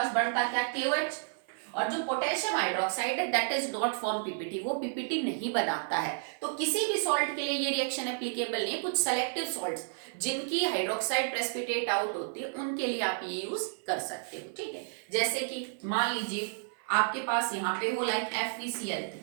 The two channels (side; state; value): left; silent; 57 dB below the other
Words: बनता क्या, KOH। और जो पोटेशियम हाइड्रोक्साइड है that is not form PPT, वो पीपीटी नहीं बनाता है। तो किसी भी सॉल्ट के लिए ये रिएक्शन एप्लीकेबल नहीं। कुछ सेलेक्टिव सॉल्ट्स जिनकी हाइड्रोक्साइड प्रेसिपिटेट आउट होती है उनके लिए आप ये यूज कर सकते हो, ठीक है। जैसे कि मान लीजिए आपके पास यहाँ पे हो like FeCl3